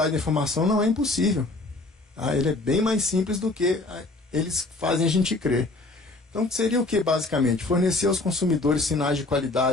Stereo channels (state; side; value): quieter; right; 3.0 dB